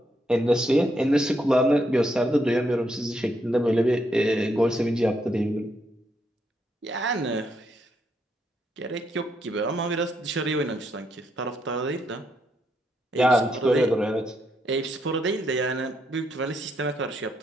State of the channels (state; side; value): normal; both; correlation 0.77